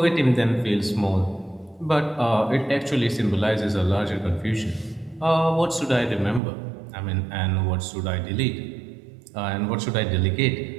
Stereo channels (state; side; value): drops out; left; at 6.4 s